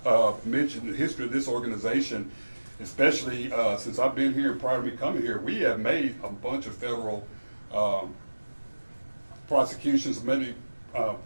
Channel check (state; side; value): inverted; both; correlation -1.00